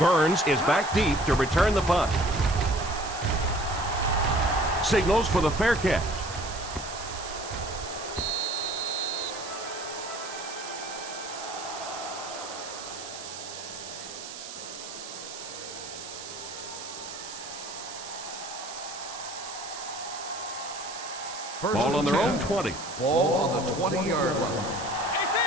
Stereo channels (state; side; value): noise; right; hiss, 11 dB below the sound